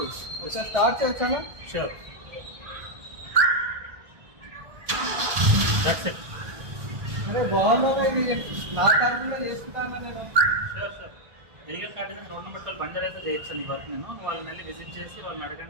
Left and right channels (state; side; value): late; left; 1.8 ms